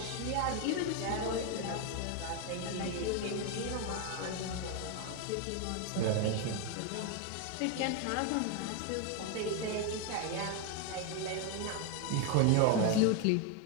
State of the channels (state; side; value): different; both; correlation 0.01